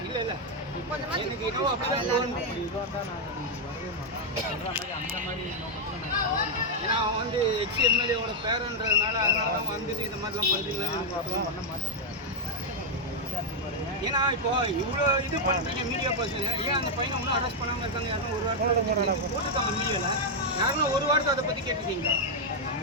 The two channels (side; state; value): both; normal; correlation -0.01